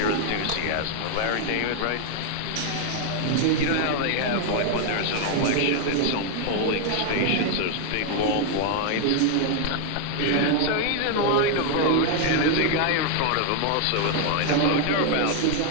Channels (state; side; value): different; both; correlation 0.00